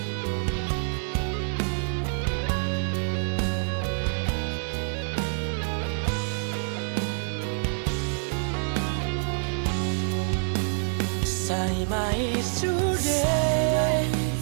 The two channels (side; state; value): left; silent; digital silence